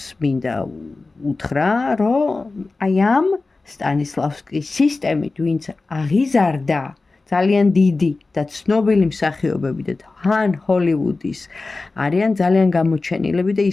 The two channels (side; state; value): right; quieter; 3.6 dB